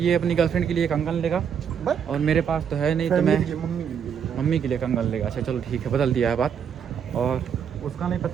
अपनी गर्लफ्रेंड के लिए कंगन लेगा और मेरे पास तो है नहीं, तो मैं मम्मी के लिए कंगन लेगा। अच्छा चलो ठीक है, बदल दिया है बात। और उसका नहीं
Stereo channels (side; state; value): left; quieter; 7.7 dB